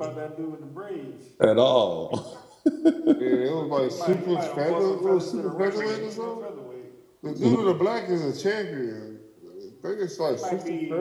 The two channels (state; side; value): identical; both; correlation 1.00